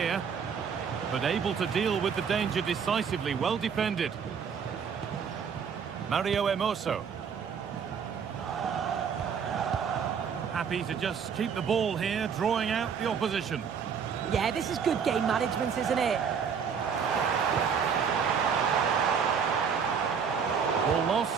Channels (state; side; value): quieter; left; 6.7 dB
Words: but able to deal with the danger decisively. Well defended. Mario Hermoso. Happy to just keep the ball here, drawing out the opposition. Yeah, this is good game management, isn't it? Ball